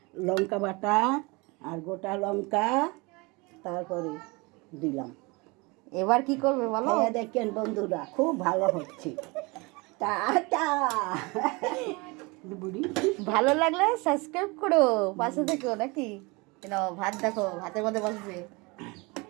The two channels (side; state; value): left; quieter; 26.4 dB